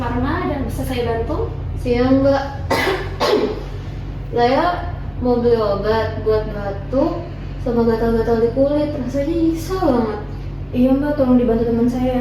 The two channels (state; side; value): identical; both; correlation 1.00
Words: Pharma dan bisa saya bantu? Siang Mbak, saya mau beli obat buat batuk sama gatal-gatal di kulit, rasanya nyesel banget. Iya Mbak, tolong dibantu teman